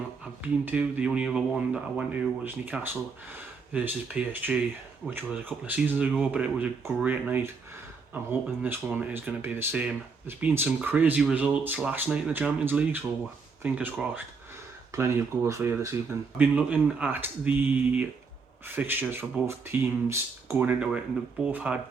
I've been to. The only other one that I went to was Newcastle versus PSG, which was a couple of seasons ago, but it was a great night. I'm hoping this one is going to be the same. There's been some crazy results last night in the Champions League, so fingers crossed. Plenty of goals for you this evening. I've been looking at the fixtures for both teams going into it, and they've both had,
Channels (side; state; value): left; quieter; 4.9 dB